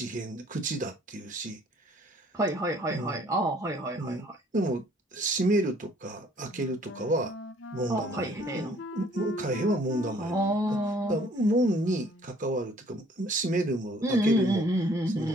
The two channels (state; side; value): normal; both; correlation 0.58